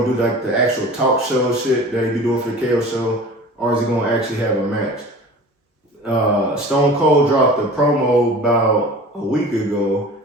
do like the actual talk show shit that he be doing for the KO show, or is he gonna actually have a match? Stone Cold dropped a promo about a week ago,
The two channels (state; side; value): normal; both; correlation 0.40